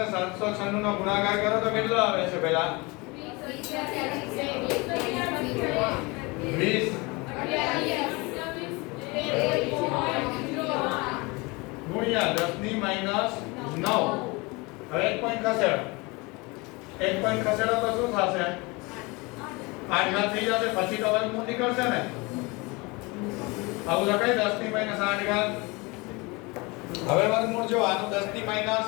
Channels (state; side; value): quieter; right; 25.9 dB